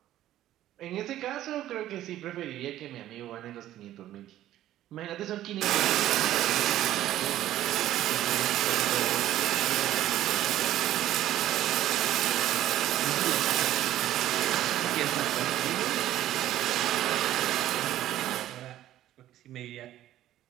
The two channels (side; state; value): left; quieter; 13.3 dB